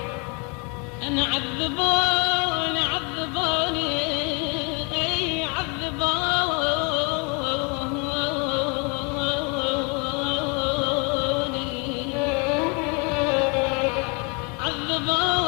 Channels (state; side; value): quieter; right; 32.9 dB